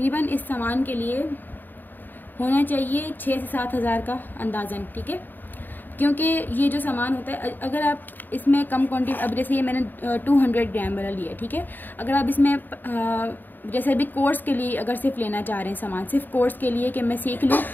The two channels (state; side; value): late; right; 0.090 ms